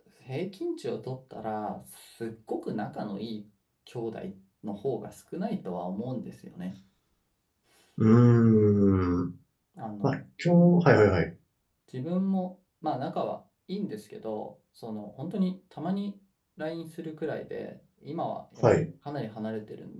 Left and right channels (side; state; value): both; identical; correlation 1.00